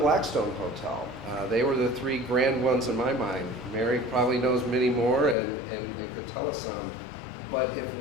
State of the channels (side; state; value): right; drops out; at 5.4 s